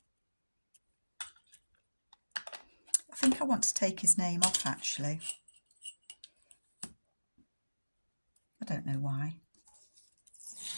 I want to take his name off actually. I don't know why.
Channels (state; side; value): inverted; both; correlation -1.00